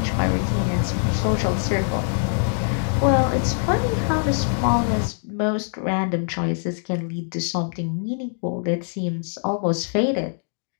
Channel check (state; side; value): silent; right; digital silence